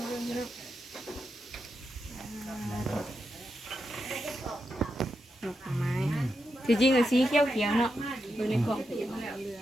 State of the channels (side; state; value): both; normal; correlation 0.86